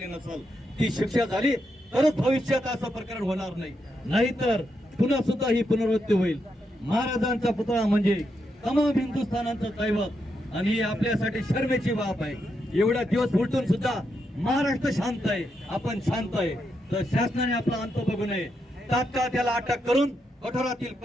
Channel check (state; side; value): normal; both; correlation 0.82